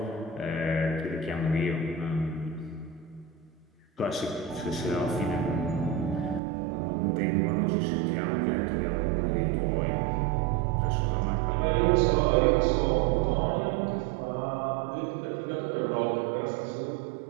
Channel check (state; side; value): drops out; left; at 6.4 s